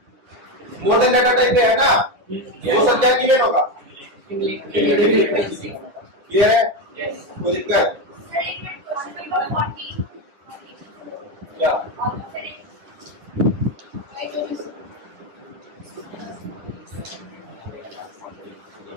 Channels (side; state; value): left; late; 10 ms